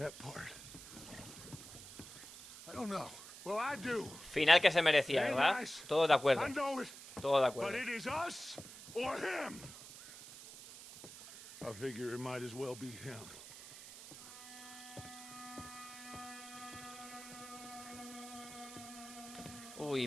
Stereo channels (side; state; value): right; noise; hiss, 14 dB below the sound